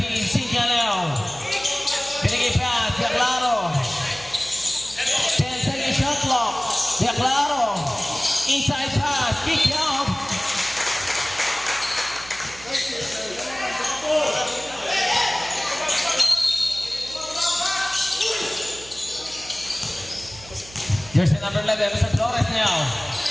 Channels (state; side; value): noise; right; hum, 20 dB below the sound